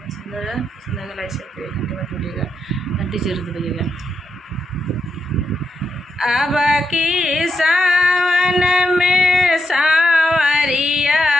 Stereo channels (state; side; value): normal; both; correlation 0.83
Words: सुंदर है, सुंदर लाइक शेयर करिए, घंटे में थोड़िएगा घंटी जरूर दबाइएगा। अब की सावन में सावरिया